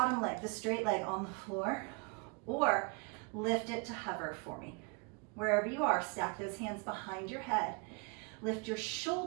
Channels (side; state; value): left; quieter; 33.4 dB